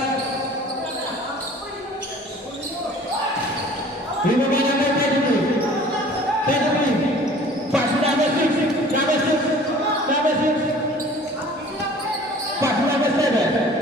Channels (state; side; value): normal; both; correlation 0.48